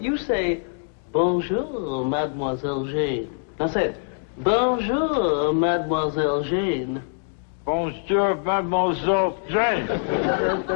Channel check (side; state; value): right; silent; digital silence